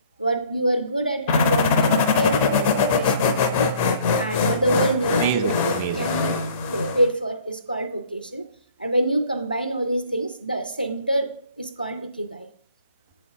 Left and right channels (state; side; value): inverted; both; correlation -0.55